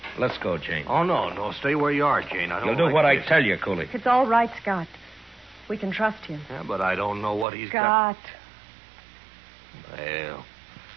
Let's go, Jane. Oh, no. Stay where you are, Jane. I don't You'll do like what this. I tell you, Cooley. It's all right, Scott. We can trust him. Yeah, but I don't know what he's got. Scott. Well.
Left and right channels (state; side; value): drops out; left; at 7.5 s